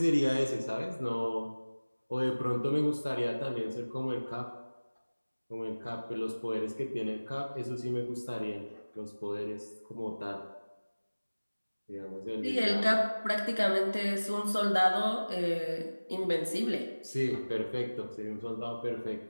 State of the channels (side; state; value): both; inverted; correlation -1.00